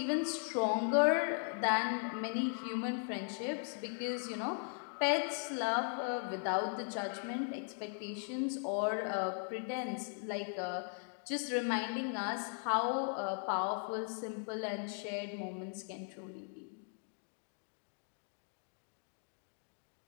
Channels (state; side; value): silent; right; 52 dB below the other